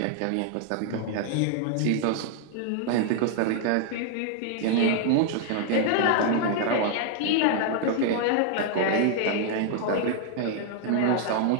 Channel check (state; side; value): different; both; correlation 0.00